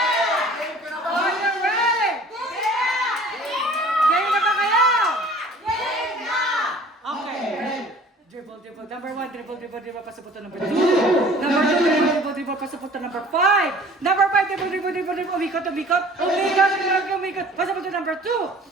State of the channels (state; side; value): normal; both; correlation 0.48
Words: Are you ready? Game na ba kayo? Okay. Dribble. Number 1, dribble, pasaputo. Number 2. Number 2, dribble, pasaputo. Number 5. Number 5, dribble, umikot. Pasaputo. Number